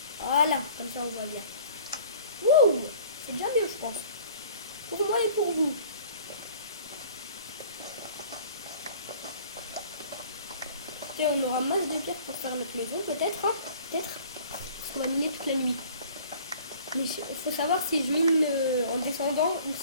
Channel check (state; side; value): inverted; both; correlation -0.49